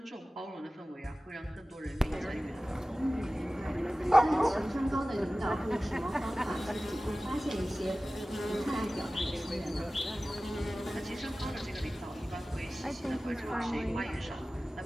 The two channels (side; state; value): both; normal; correlation 0.97